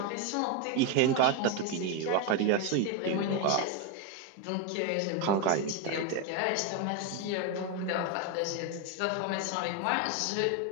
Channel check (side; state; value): both; different; correlation 0.02